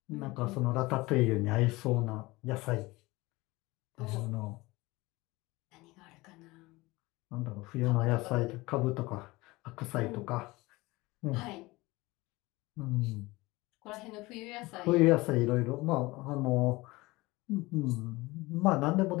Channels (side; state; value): right; quieter; 21.4 dB